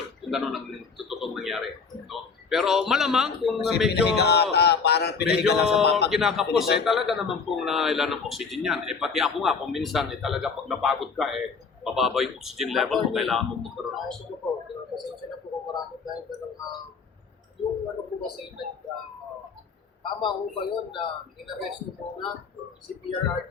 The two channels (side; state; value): right; quieter; 5.3 dB